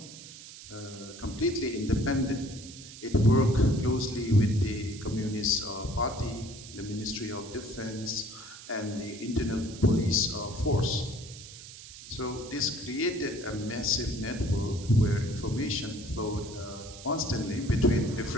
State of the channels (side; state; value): right; noise; hiss, 15 dB below the sound